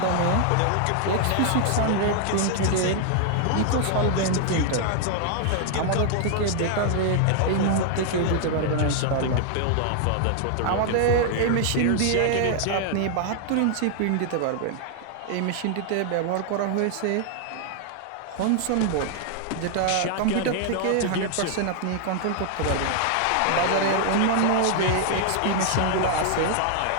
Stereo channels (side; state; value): both; different; correlation 0.00